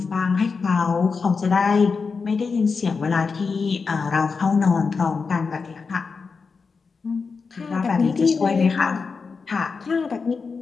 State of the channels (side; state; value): right; quieter; 4.9 dB